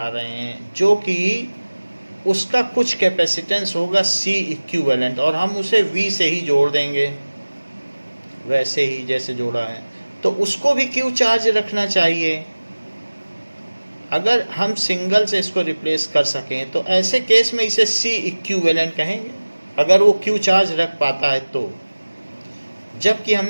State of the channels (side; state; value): both; inverted; correlation -1.00